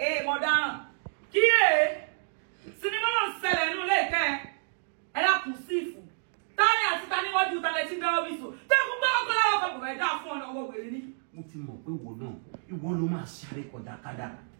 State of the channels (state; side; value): silent; left; digital silence